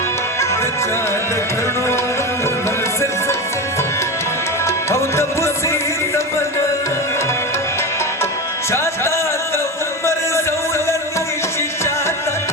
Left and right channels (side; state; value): both; normal; correlation 0.22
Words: جاهد तब से तमन्ना चाहता तो उमर ज़ौलत शिचाता